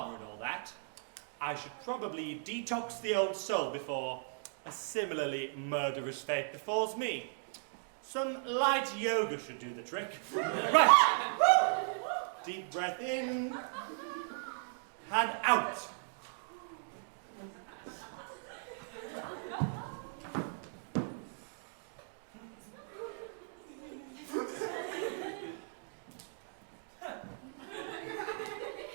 and all that, I should probably detox the old soul before a similarly murderous fate befalls me. Some light yoga should do the trick. Right. Deep breath in and out.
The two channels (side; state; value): left; silent; digital silence